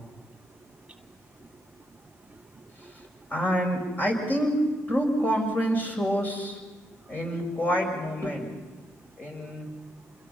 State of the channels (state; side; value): normal; both; correlation 0.80